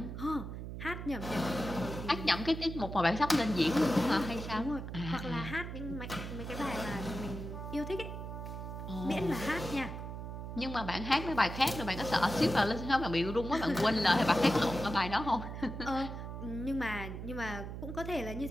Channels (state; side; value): noise; right; hum, 7 dB below the sound